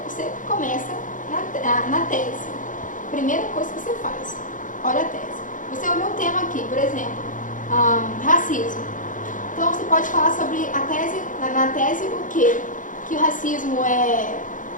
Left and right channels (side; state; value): right; late; 0.38 ms